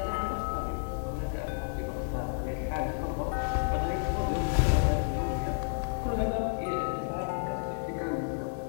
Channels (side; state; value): right; silent; digital silence